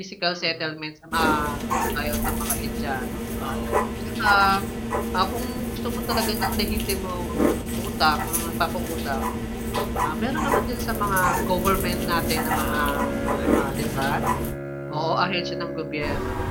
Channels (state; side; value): identical; both; correlation 1.00